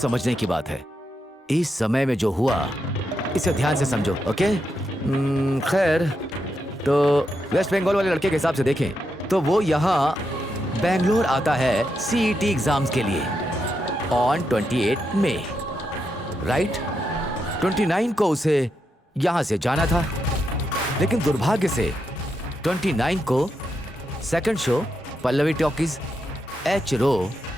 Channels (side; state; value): both; normal; correlation 0.84